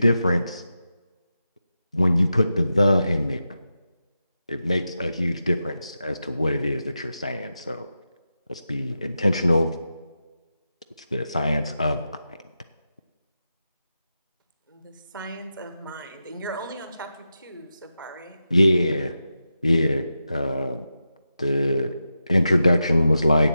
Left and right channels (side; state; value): both; inverted; correlation -0.90